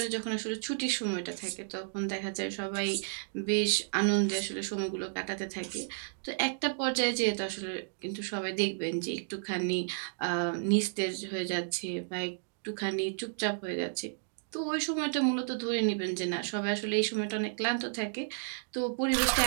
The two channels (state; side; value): silent; left; digital silence